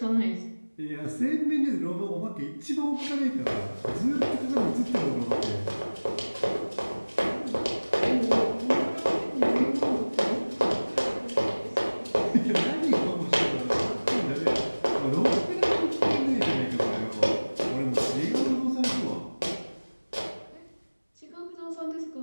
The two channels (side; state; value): both; inverted; correlation -1.00